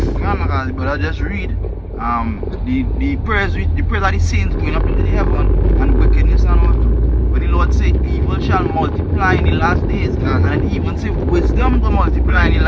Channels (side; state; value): both; identical; correlation 1.00